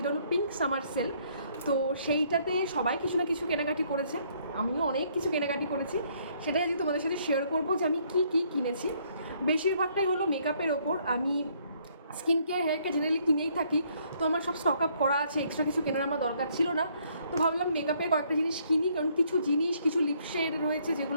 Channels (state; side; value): inverted; both; correlation -0.66